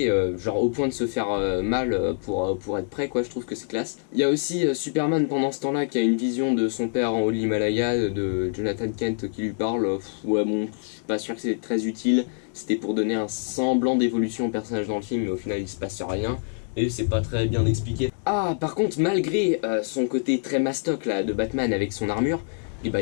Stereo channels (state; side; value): silent; right; digital silence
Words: genre au point de se faire mal pour être prêt quoi, je trouve que c'est classe. Il y a aussi Superman pendant ce temps-là qui a une vision de son père en haut de l'Himalaya, de Jonathan Kent qui lui parle, ouais bon, je suis pas sûr que c'est très utile, c'était pour donner un semblant d'évolution au personnage dans le film, mais au final il se passe rien. Et c'est pas très bien expliqué. Ah, par contre, malgré son côté très mastoc là de Batman avec son armure, il